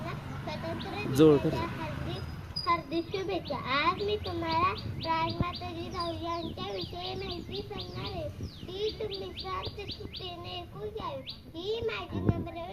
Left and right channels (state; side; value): identical; both; correlation 1.00